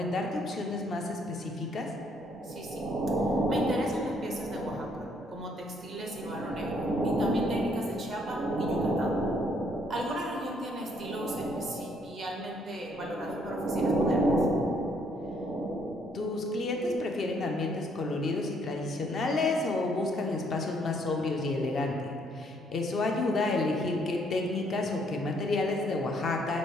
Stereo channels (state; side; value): normal; both; correlation 0.68